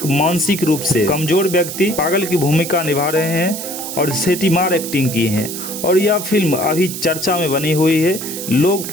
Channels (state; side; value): noise; right; hiss, 7 dB below the sound